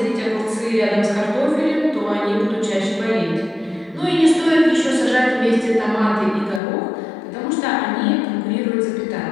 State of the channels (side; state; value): right; drops out; at 6.6 s